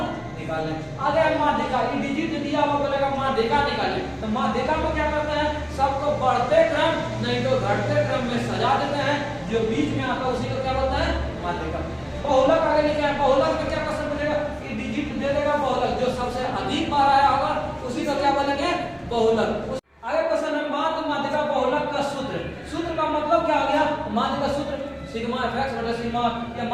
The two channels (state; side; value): identical; both; correlation 1.00